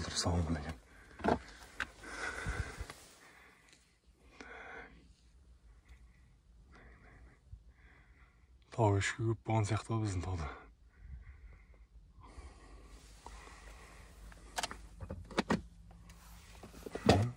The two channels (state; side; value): identical; both; correlation 1.00